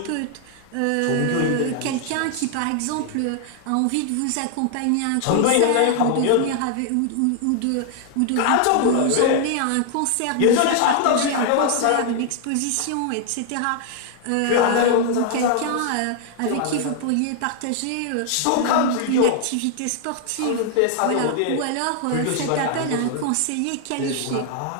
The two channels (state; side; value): different; both; correlation 0.00